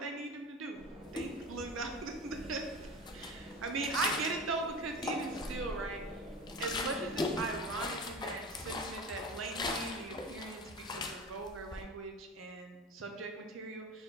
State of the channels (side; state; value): both; normal; correlation 0.32